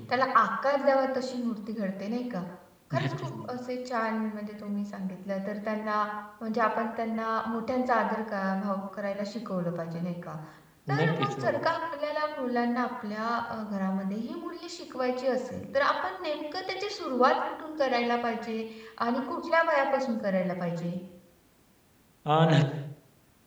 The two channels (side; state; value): both; identical; correlation 1.00